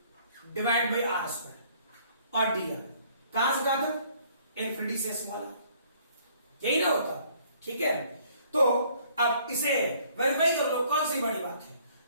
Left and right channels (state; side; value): inverted; both; correlation -0.61